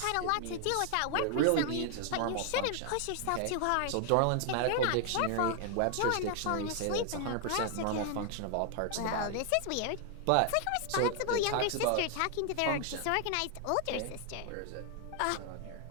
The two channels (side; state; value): both; different; correlation 0.00